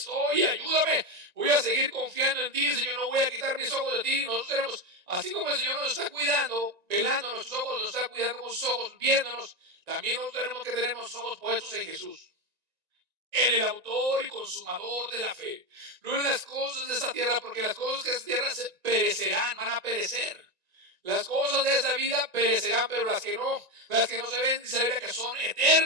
ayúdame. Voy a seguir confiando en ti, Señor, no voy a quitar mis ojos de ti. Nosotros tenemos, así como el Señor nos está cuidando, velando nuestros ojos, nos está cuidando con sus ojos, viéndonos, también nosotros tenemos que tener nuestros ojos puestos en Jesús, en el autor y consumador de la fe. No en las cosas de esta tierra, porque las cosas de esta tierra perecerán, van a perecer. Las cosas de esa vida perecerán, pero las que no se ven, dice la Biblia que son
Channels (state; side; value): late; left; 1.9 ms